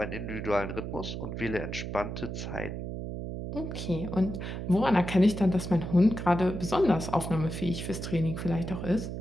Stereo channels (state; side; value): noise; right; hum, 6 dB below the sound